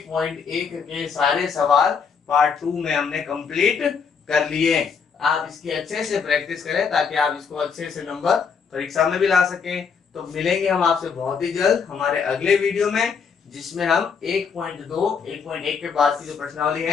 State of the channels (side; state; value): right; quieter; 6.0 dB